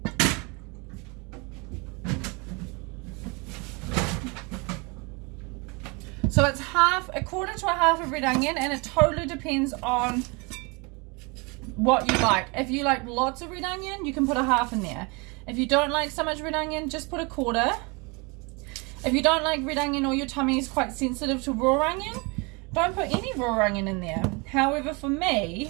So it's a quarter to a half of red onion, and it totally depends on what you like. If you like lots of red onion, you can put a half in there. If you don't like so much red onion, just put a quarter. If you don't like red onion or your tummy is quite sensitive to raw onion, don't put any raw onion in there. However, for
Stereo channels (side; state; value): left; quieter; 29.3 dB